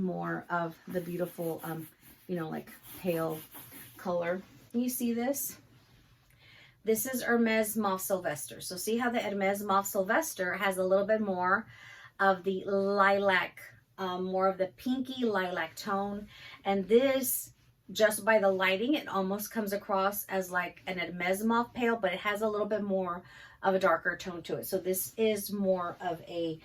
of the beautiful, like pale color. Can you see this? This is Hermes Mauve Sylvester. So see how the Hermes Mauve Sylvester has a little bit more of the lilac, more of the pinky lilac tone. And this, just by the lighting, it almost comes across as like an Hermes Mauve pale, but it has a little bit more of a darker tone to it. So this is more of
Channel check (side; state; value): both; identical; correlation 1.00